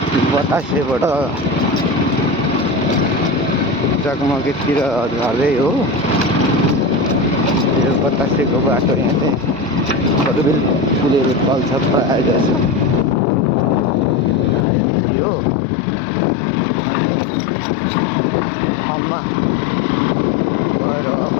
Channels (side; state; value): right; drops out; at 14.7 s